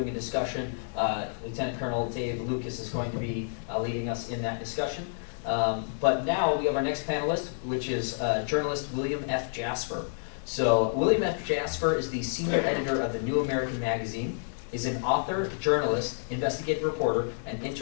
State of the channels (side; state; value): right; silent; digital silence